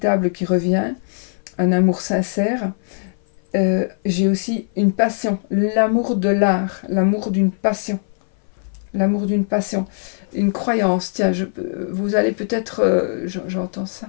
qui revient, un amour sincère. J'ai aussi une passion, l'amour de l'art, l'amour d'une passion. L'amour d'une passion, une croyance. Tiens, vous allez peut-être... j'entends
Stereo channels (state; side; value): silent; right; 58 dB below the other